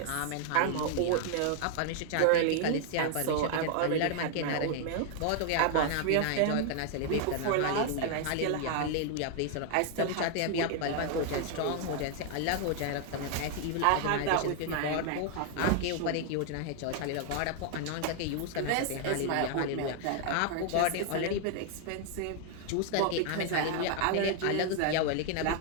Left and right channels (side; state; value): both; different; correlation 0.00